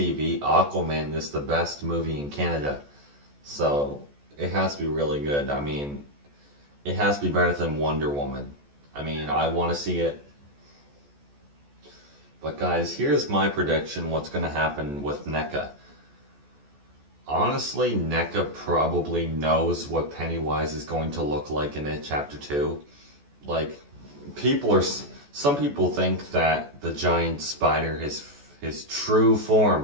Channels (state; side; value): late; left; 14 ms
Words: Aquaman is the best movie in Canada. So it has to be really good. I mean, it has to be better than Wonder Woman. I mean, I want to see it. But guys, here's my prediction what's going to happen with NECA. Honestly, NECA probably knows what Pennywise is going to look like in It Chapter 2. Like, some people think that the giant spider, his true